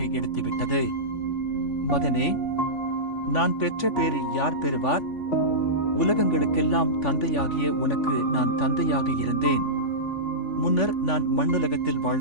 எடுத்துவிட்டது. மகனே, நான் பெற்ற பேரை யார் பெறுவார்? உலகங்களுக்கெல்லாம் தந்தையாகிய உனக்கு நான் தந்தையாக இருந்தேன். முன்னர் நான் மண்ணுலகத்தில்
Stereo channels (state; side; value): late; right; 3.5 ms